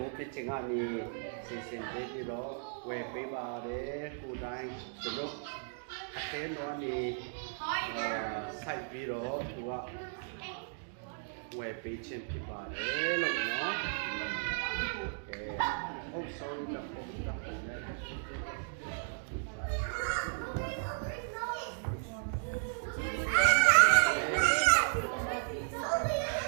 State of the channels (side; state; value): left; silent; digital silence